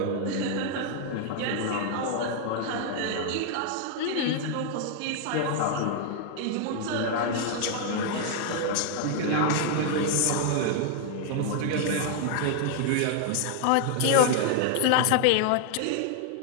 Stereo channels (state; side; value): different; both; correlation 0.00